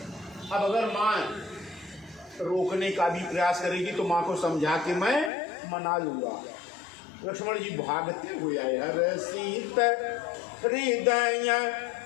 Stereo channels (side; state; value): right; drops out; at 5.3 s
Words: अब अगर माँ रोकने का भी प्रयास करेगी तो माँ को समझा के मैं मना लूंगा। लक्ष्मण जी भागते हुए आए, हर सीत हृदय